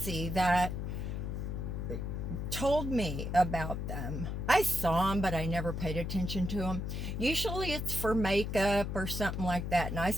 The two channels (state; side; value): noise; left; hum, 3 dB below the sound